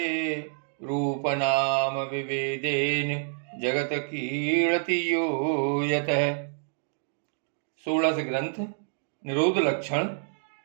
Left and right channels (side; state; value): left; silent; digital silence